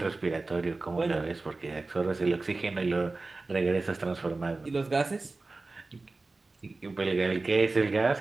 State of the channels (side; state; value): left; quieter; 3.4 dB